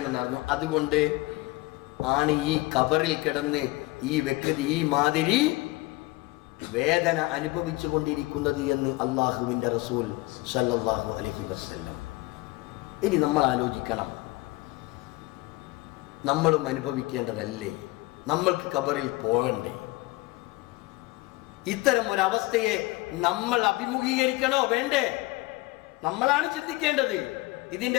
നടന്നു. അതുകൊണ്ട് ആണ് ഈ ഖബറിൽ കിടന്ന് ഈ വ്യക്തി ഈ മാതിരി വേദന അനുഭവിച്ചു കൊണ്ടിരിക്കുന്നത് എന്ന് അള്ളാഹുവിൻ്റെ റസൂൽ സല്ലല്ലാഹു അലൈഹി വസല്ലം. ഇനി നമ്മൾ ആലോചിക്കണം, നമ്മളും അനുഭവിക്കേണ്ടതല്ലേ? നമ്മൾക്ക് ഖബറിൽ പോകണ്ടേ? ഇത്തരം ഒരവസ്ഥയെ നമ്മൾ അഭിമുഖീകരിക്കണോ വേണ്ടേ? നമ്മളാണ് ചിന്തിക്കേണ്ടത്.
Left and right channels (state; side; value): quieter; right; 21.4 dB